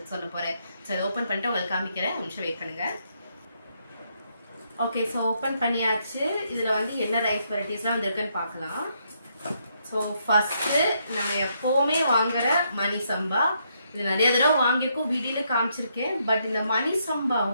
சொல்ல போகிறேன். ஸோ அதை ஓப்பன் பண்ணிட்டு உங்களுக்கு காமிக்கிறேன். ஒரு நிமிஷம் வெயிட் பண்ணுங்கள். ஓகே, ஸோ ஓப்பன் பண்ணியாச்சு. இதில் வந்து என்ன ரைஸ் வெரைட்டிஸ்லாம் வந்துருக்குன்னு பார்க்கலாம். ஸோ ஃபஸ்ட்டு நம்ம எப்போவுமே வாங்குகிற மணி சம்பா. இது நிறைய தடவை வாங்கியிருக்கோம், வீடியோவில் காமிச்சிருக்கேன். பட் இந்த மணி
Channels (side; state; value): both; inverted; correlation -0.75